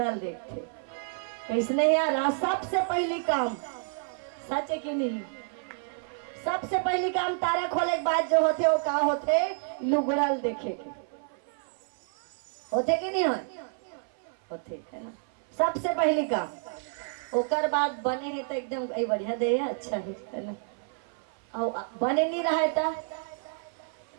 देखते कैसने यार सबसे पहली काम सच है कि नहीं, सबसे पहली काम तारा खोले के बाद जो होते वो का होते लुगड़ल देखे के होते कि नहीं होते है ना, सबसे पहली काम। ओकर बाद बने है तो एकदम बढ़िया दे है अच्छा है ना, और बने नहीं रहा था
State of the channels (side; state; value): left; silent; 57 dB below the other